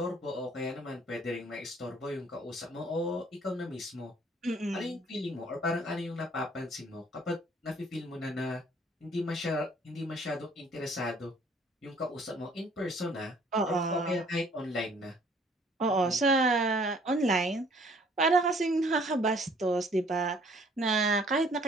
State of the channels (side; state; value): both; normal; correlation 0.59